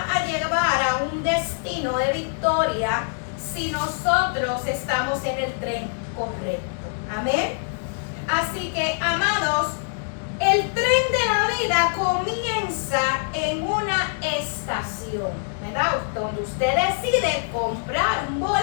a llevar a un destino de victoria si nosotros estamos en el tren correcto. Amén. Así que, amados, el tren de la vida comienza en una estación, ¿verdad? Donde usted decide comprar un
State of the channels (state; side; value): silent; right; 63 dB below the other